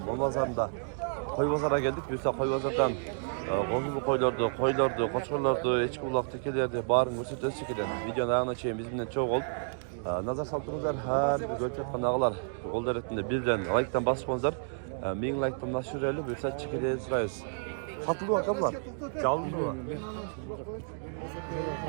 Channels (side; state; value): left; silent; digital silence